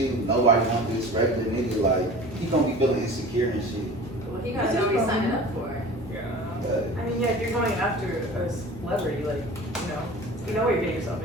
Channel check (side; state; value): both; normal; correlation 0.39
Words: nobody wants this regular nigga. Like he gonna be feeling insecure and shit. Well, he gotta know what he's signing up for. Yeah. But I mean, yeah, if you're going after a celebrity, like, you know what you're getting yourself